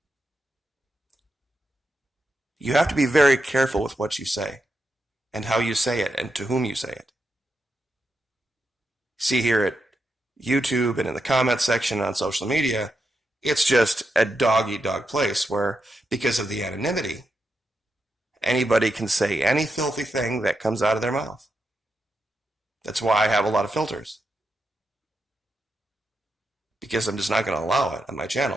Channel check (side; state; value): both; normal; correlation 0.85